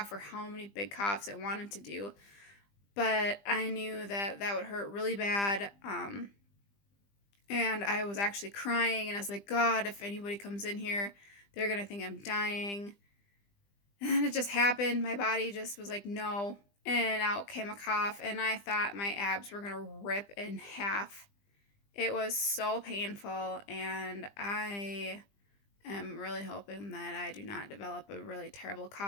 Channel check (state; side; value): late; right; 20 ms